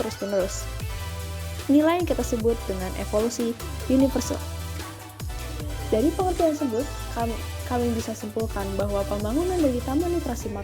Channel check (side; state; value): both; identical; correlation 1.00